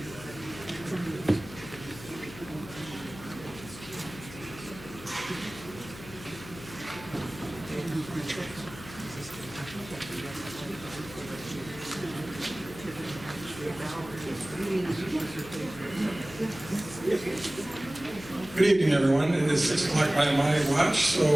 Good evening, everyone. It is 6 o'clock by my watch, so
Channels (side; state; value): left; noise; hum, 15 dB below the sound